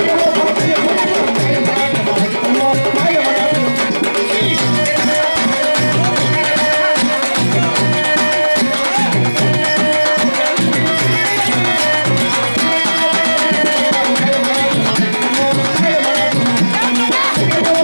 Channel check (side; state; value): both; inverted; correlation -1.00